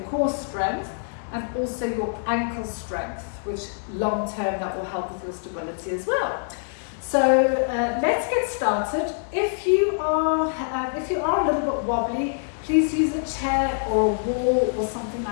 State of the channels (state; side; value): silent; right; digital silence